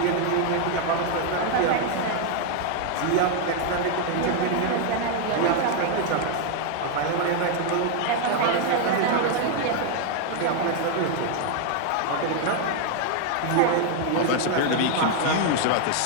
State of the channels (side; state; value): both; different; correlation 0.00